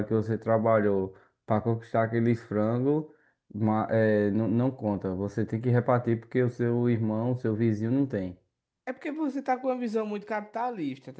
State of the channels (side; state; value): both; identical; correlation 1.00